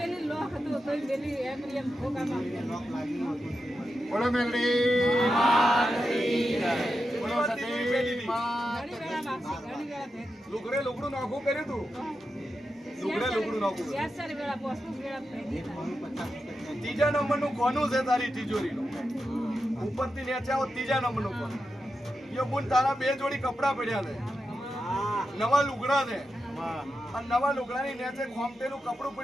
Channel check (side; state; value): both; normal; correlation 0.89